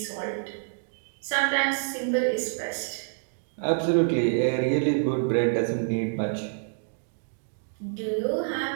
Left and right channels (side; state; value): left; silent; digital silence